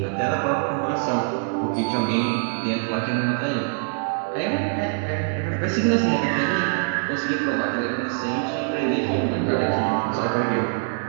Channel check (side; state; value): left; silent; 59 dB below the other